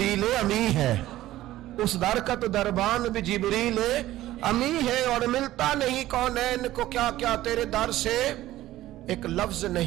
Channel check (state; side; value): quieter; left; 15.1 dB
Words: امی ہے. اس در کا تو دربان بھی جبریل امی ہے. اور ملتا نہیں کونین کو کیا کیا تیرے در سے ایک لفظ